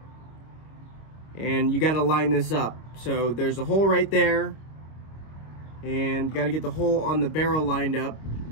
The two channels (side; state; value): right; late; 25 ms